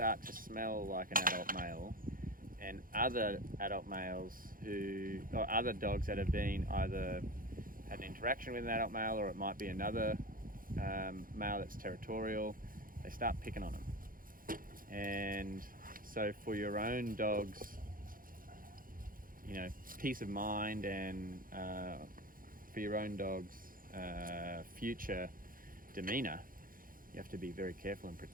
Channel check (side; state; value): left; late; 0.41 ms